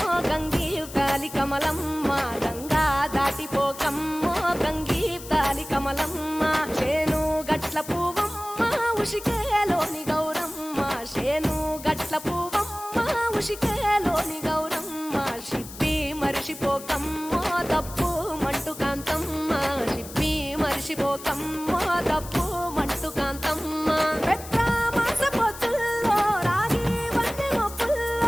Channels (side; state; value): left; noise; hiss, 14 dB below the sound